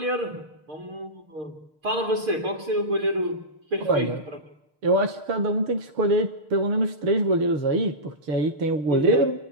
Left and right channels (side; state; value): left; late; 6.5 ms